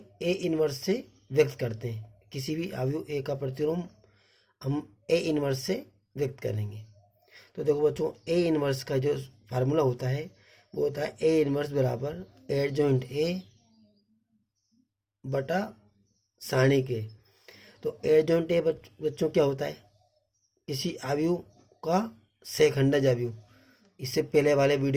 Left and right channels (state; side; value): identical; both; correlation 1.00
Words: ए इनवर्स से व्यक्त करते हैं। किसी भी अवयव ए का प्रतिलोम हम ए इनवर्स से व्यक्त करेंगे। तो देखो बच्चों, ए इनवर्स का जो फार्मूला होता है वो होता है ए इनवर्स बराबर एडजॉइंट ए बटा सारणी के। तो एडजॉइंट ए बच्चों क्या होता है? किसी अवयव का सेखंडज अवयव। इससे पहले वाले